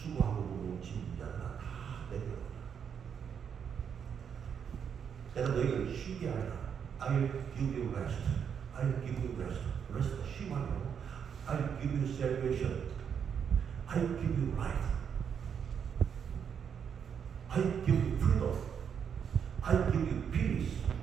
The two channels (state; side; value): quieter; left; 7.5 dB